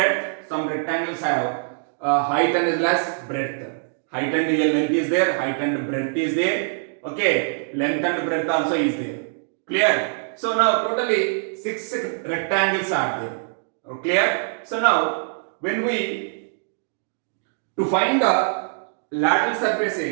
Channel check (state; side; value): silent; left; digital silence